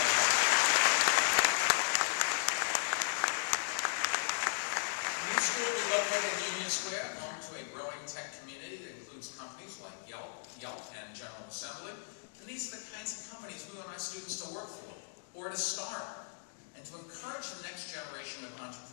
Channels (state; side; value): silent; right; digital silence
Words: Will be located in Union Square, home to a growing tech community that includes companies like Yelp, and General Assembly. And these are the kinds of companies we want our students to work for, or to start, and to encourage the next generation of